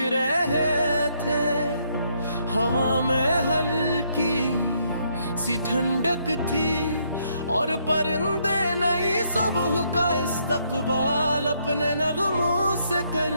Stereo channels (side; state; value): both; inverted; correlation -0.72